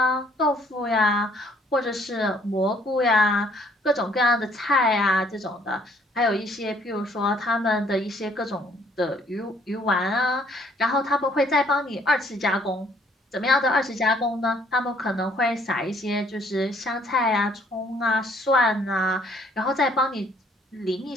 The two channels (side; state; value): both; normal; correlation 0.63